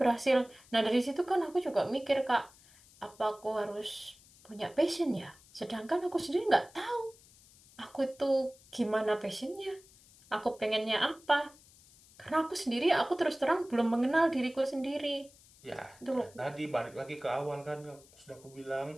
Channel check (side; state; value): left; noise; hiss, 25 dB below the sound